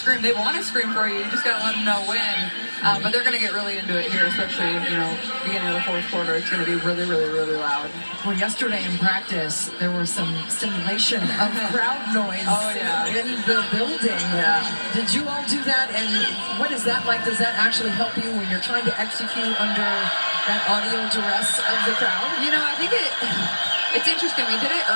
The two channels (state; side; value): inverted; both; correlation -1.00